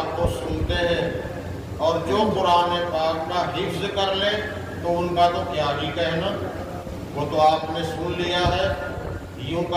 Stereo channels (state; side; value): identical; both; correlation 1.00